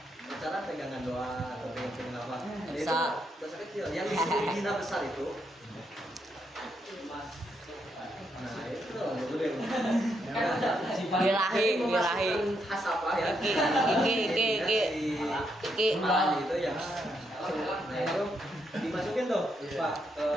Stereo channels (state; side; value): normal; both; correlation 0.79